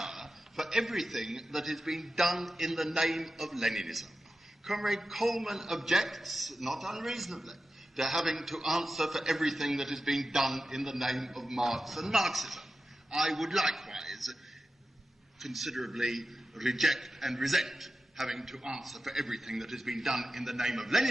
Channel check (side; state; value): both; normal; correlation 0.92